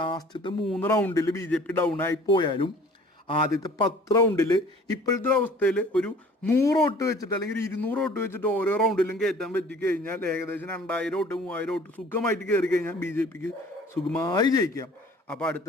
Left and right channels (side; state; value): both; normal; correlation 0.50